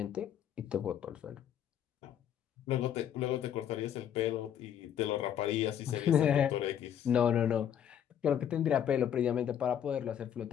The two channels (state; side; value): quieter; right; 9.5 dB